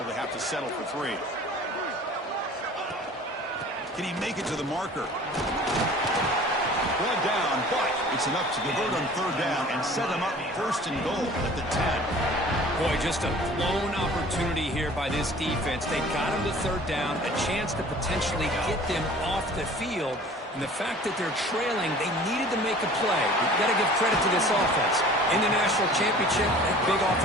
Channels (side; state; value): both; normal; correlation 0.46